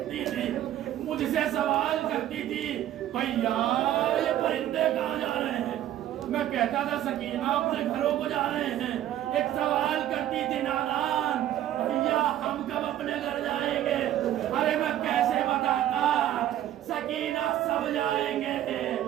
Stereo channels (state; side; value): quieter; left; 12.4 dB